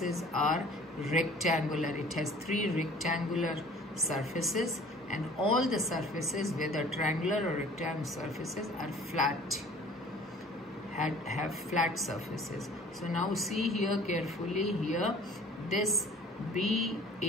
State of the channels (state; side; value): normal; both; correlation 0.49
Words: are rectangular. It has three rectangular surfaces and all the surfaces, whether triangular or rectangular surfaces, are flat, have flat surfaces. So now see here carefully, here this